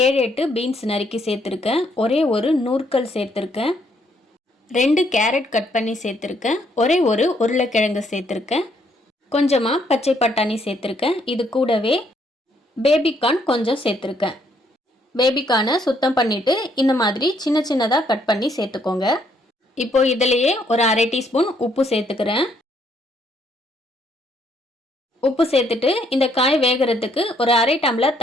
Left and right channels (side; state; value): both; normal; correlation 0.70